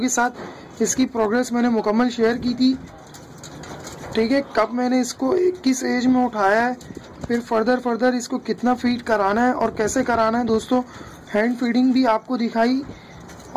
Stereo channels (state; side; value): identical; both; correlation 1.00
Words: साथ इसकी प्रोग्रेस मैंने मुकम्मल शेयर की थी। ठीक है। कब मैंने इसको किस एज में उठाया है, फिर फर्दर इसको कितना फीड कराना है और कैसे कराना है दोस्तों, हैंड फीडिंग भी आपको दिखाई,